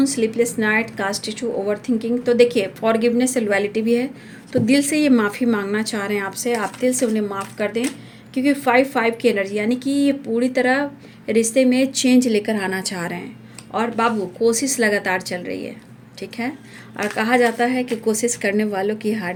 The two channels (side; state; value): both; identical; correlation 1.00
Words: sleepless night, caste issue, over thinking. तो देखिए फॉरगिवनेस, लॉयल्टी भी है, तो दिल से ये माफ़ी मांगना चाह रहे हैं आपसे, आप दिल से उन्हें माफ़ कर दें, क्योंकि 5-5 की एनर्जी, यानी कि ये पूरी तरह रिश्ते में चेंज लेकर आना चाह रहे हैं। और बाबू कोशिश लगातार चल रही है, ठीक है, और कहा जाता है कि कोशिश करने वालों की हार